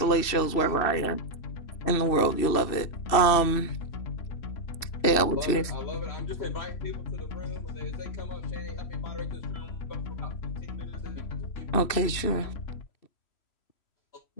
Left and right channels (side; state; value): right; late; 2.7 ms